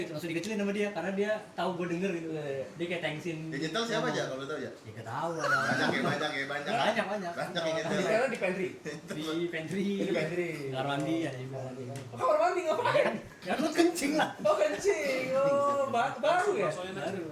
gitu, langsung dikecilin sama dia karena dia tahu gue denger gitu. Dia kayak thanksin. Digital siapa aja kalau tahu ya? Ya gak tahu lah. Banyak ya. Banyak. Banyak yang Di nyetel. di pantry. Di pantry. Di pantry. Kamar mandi ya juga. Kamar mandi ngapain? Ya lu kencing lah. Oh kencing. Oh baru ya? Baru.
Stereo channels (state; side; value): identical; both; correlation 1.00